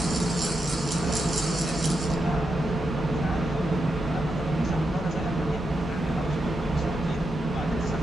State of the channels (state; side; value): normal; both; correlation 0.86